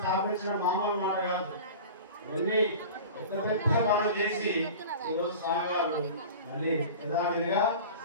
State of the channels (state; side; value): inverted; both; correlation -0.36